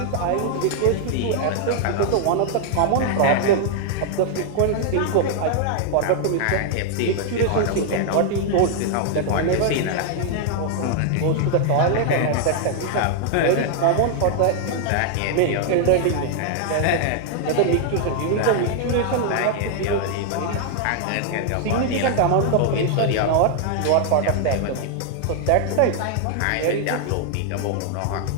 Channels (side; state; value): both; different; correlation 0.00